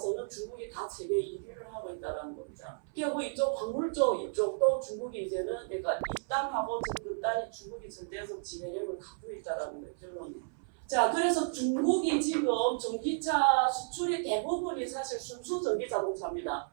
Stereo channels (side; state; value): left; silent; 56 dB below the other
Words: 중국이 다 세계 1위를 하고 있다는 겁니다. 그리고 이쪽 광물 쪽 이쪽도 중국이 이제는 그러니까 입단하고 전급단이 중국이 절대적 지배력을 갖고 있다는 거예요. 결론이. 자, 그래서 중국이 지금 전기차 수출의 대부분이 사실 순수 전기 자동차입니다.